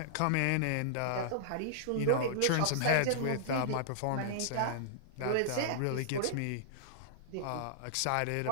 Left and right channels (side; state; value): both; different; correlation -0.02